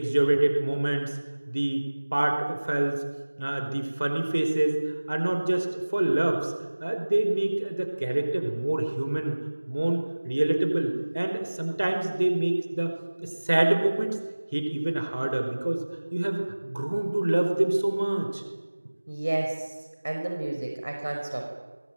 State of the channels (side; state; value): both; inverted; correlation -1.00